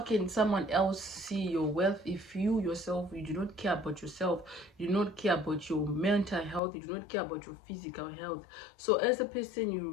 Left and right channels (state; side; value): drops out; right; at 6.6 s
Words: someone else see your wealth if you yourself, you do not care about yourself, you do not care about your mental health, you do not care about your physical health? So as a person, you